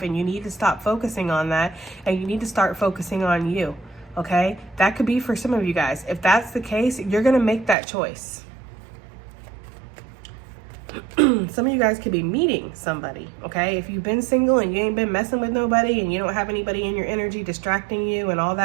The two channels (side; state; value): left; drops out; at 7.8 s